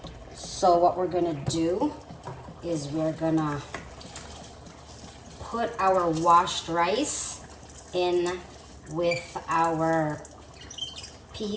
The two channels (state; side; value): identical; both; correlation 1.00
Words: So what we're gonna do is we're gonna put our washed rice in with our